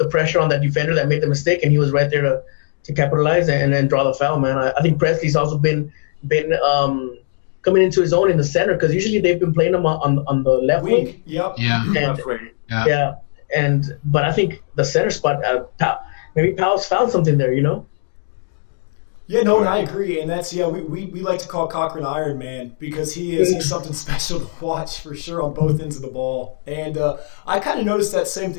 pressure on that defender that made the mistake, and he was right there to capitalize and then draw the foul. Man, I think Presley's also been coming into his own in the center, because usually they've been playing him on the left wing. Yep. Yeah. But I think the center spot, maybe Powell's found something there. Yeah, no, and I agree, and that's we like to call Cochran Iron Man, because he's something special to watch for sure on both ends of the ball. And I kind of noticed that same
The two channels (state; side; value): silent; right; digital silence